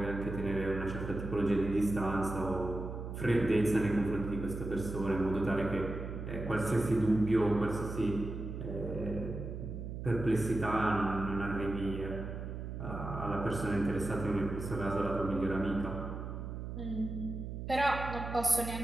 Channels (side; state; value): right; noise; hum, 7 dB below the sound